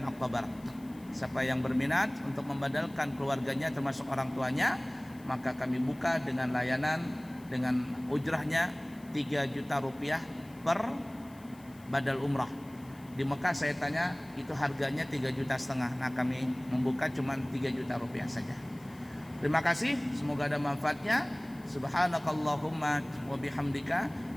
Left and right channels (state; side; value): noise; left; hiss, 26 dB below the sound